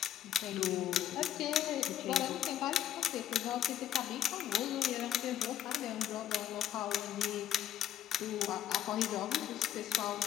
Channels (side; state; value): right; quieter; 10.8 dB